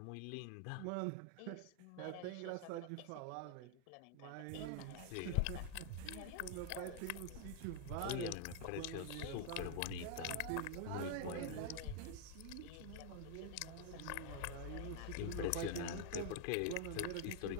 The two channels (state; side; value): different; both; correlation 0.00